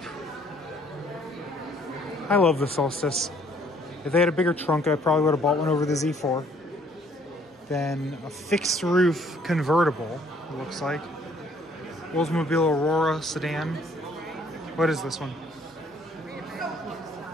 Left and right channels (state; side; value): normal; both; correlation 0.62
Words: I love the Solstice. If they had a bigger trunk, I probably would have bought one over the Z4. Then a fixed roof convertible, it looks like. Oldsmobile Aurora sedan. What is this one?